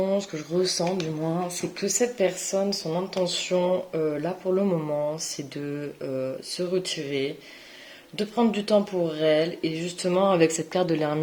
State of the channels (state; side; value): identical; both; correlation 1.00